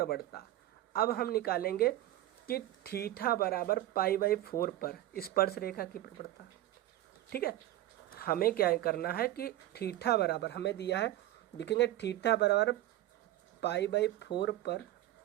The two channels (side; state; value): left; quieter; 14.7 dB